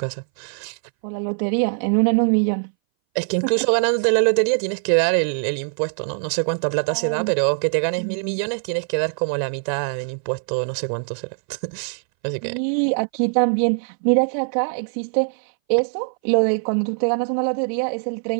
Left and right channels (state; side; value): silent; left; 61 dB below the other